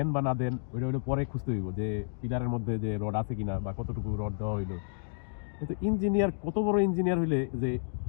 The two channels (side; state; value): right; silent; digital silence